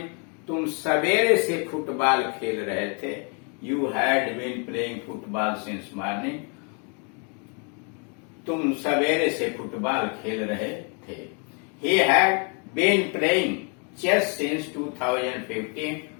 तुम सवेरे से फुटबॉल खेल रहे थे। You had been playing football since morning. तुम सवेरे से फुटबॉल खेल रहे थे। He had been playing chess since 2015।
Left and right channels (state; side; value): quieter; right; 37.8 dB